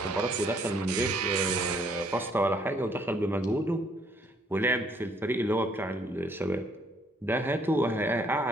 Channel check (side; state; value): both; normal; correlation 0.66